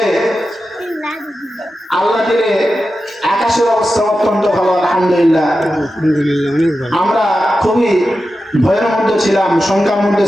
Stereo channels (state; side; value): normal; both; correlation 0.91